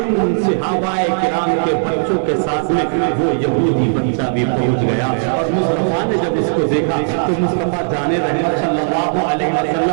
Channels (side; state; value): left; silent; digital silence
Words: صحابہ کرام کے بچوں کے ساتھ میں وہ یہودی بچہ بھی پہنچ گیا اور مصطفیٰ نے جب اس کو دیکھا تو مصطفیٰ جان رحمت صلی اللہ علیہ